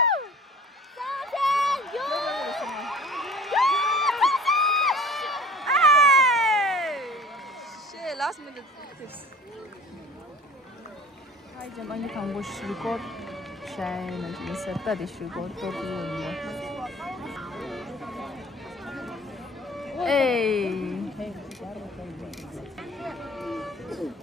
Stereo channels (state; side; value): normal; both; correlation 0.45